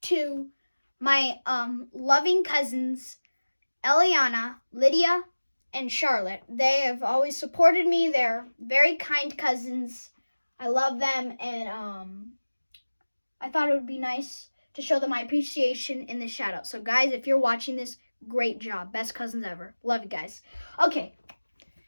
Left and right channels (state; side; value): inverted; both; correlation -1.00